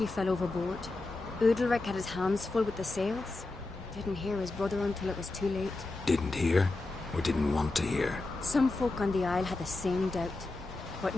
fell overboard. Udalric had his hands full with the sails. Didn't hear his brother until it was too late. Didn't hear? Or didn't want to hear? Some folk on the isle had the same doubt. but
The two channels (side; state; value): right; quieter; 3.1 dB